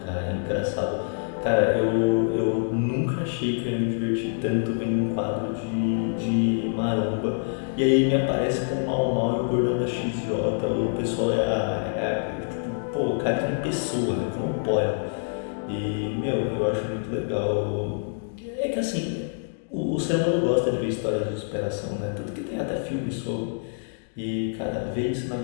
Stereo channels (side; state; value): right; silent; digital silence